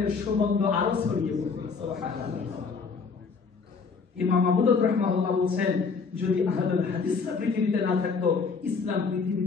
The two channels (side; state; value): right; quieter; 5.1 dB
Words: সুগন্ধ আরো ছড়িয়ে পড়বে। সুবহানাল্লাহ। ইমাম আবু দাউদ রাহিমাহুল্লাহ বলেন, যদি আহলুল হাদিসরা পৃথিবীতে না থাকতো, ইসলাম পৃথিবী